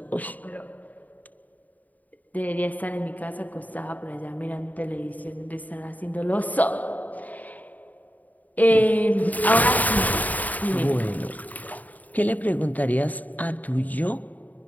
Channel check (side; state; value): right; late; 0.076 ms